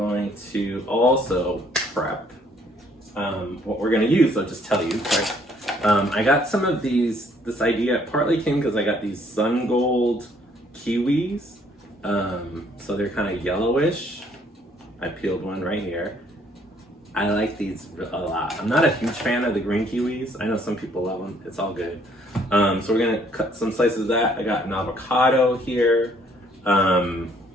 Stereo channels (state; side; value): normal; both; correlation 0.63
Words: to also prep what we're going to use. I'll just tell you. I got some of these. This idea partly came because I got these sun gold kiwis. So they're kind of yellowish. I peeled one right here. I like these a lot. I'm not a huge fan of the green kiwis. I know some people love them. It's all good. So we're gonna cut some slices of that. I got an avocado here.